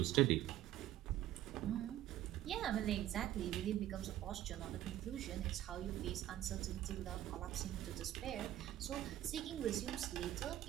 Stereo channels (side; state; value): left; quieter; 13.1 dB